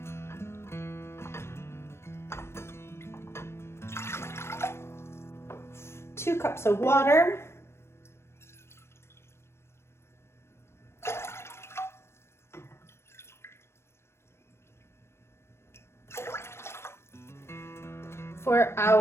Two cups of water, for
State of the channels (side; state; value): right; late; 0.12 ms